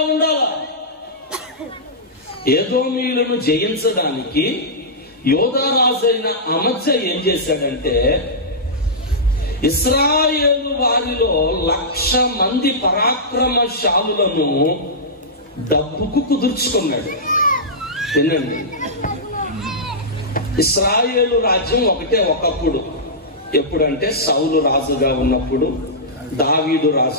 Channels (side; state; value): both; normal; correlation -0.14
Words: ఉండాలి. ఏదోమీయులను జయించడానికి యోధారాజైన అమధ్య ఏం చేశాడంటే, ఇశ్రాయేలు వారిలో 1,00,000 మంది పరాక్రమశాలులను డబ్బుకు కుదుర్చుకున్నాడు. వినండి, ఇశ్రాయేలు రాజ్యం ఒకటే ఒకప్పుడు. ఎప్పుడంటే సౌలు రాజుగా ఉన్నప్పుడు, దావీదు